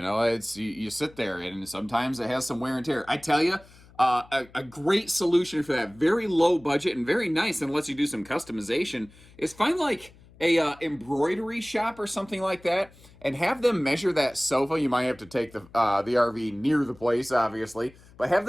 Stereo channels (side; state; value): left; noise; hum, 25 dB below the sound